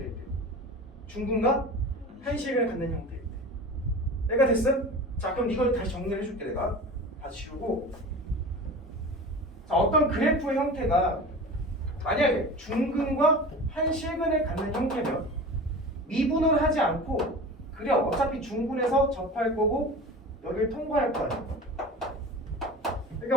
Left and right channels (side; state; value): both; normal; correlation 0.34